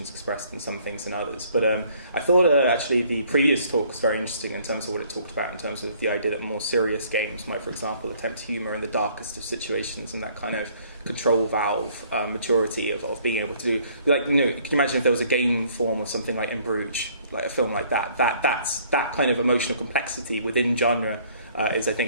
expressed in some things than others. But I thought actually the previous talk was very interesting in terms of what it talked about, in terms of the idea that more serious games might, for example, attempt humour in the darkest of situations, and that kind of control valve maturity of being able to do, like, could you imagine if there was a game form of something like In Bruges, like a film like that's that kind of emotional complexity within genre is, I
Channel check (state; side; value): inverted; both; correlation -0.60